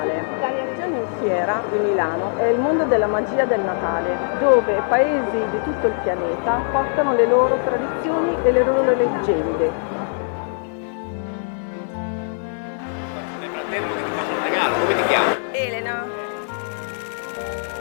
Siamo in fiera di Milano, è il mondo della magia del Natale, dove paesi di tutto il pianeta portano le loro tradizioni e le loro leggende. Nel frattempo che ti faccio un regalo, come ti chiami? Elena.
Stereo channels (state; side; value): silent; right; digital silence